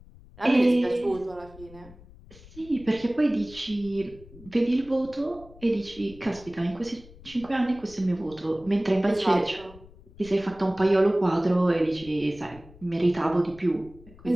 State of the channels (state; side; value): noise; left; rumble, 21 dB below the sound